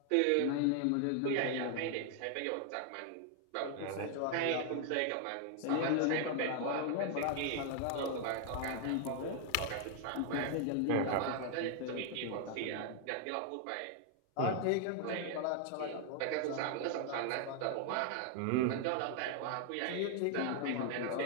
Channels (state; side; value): different; both; correlation 0.00